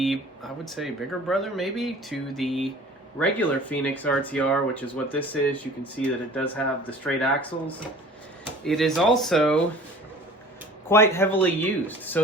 I would say, bigger brother maybe to the regular Phoenix RTR, which is what this is. You can see that it does have the straight axles. It is also quite heavily used.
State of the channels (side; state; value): both; normal; correlation 0.45